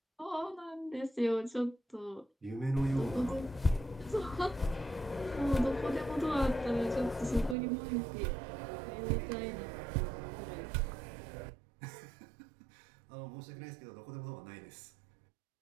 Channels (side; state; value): left; drops out; at 7.6 s